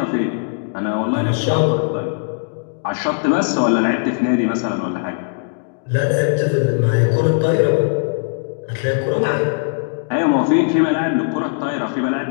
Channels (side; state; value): right; silent; digital silence